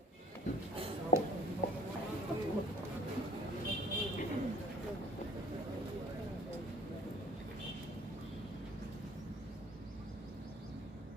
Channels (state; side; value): normal; both; correlation 0.51